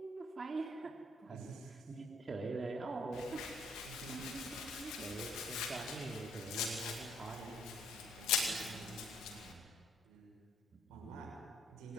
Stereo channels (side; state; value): both; normal; correlation 0.67